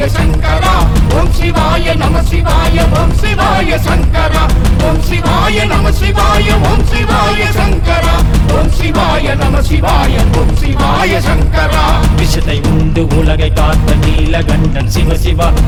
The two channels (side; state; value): both; identical; correlation 1.00